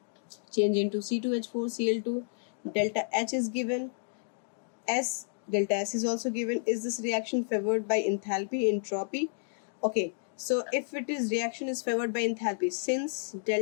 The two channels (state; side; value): silent; right; digital silence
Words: change into C2H4Cl2, delta H is given, delta S is also given. Is this reaction favored by enthalpy, entropy? Okay, so if it is reaction is favored by enthalpy, since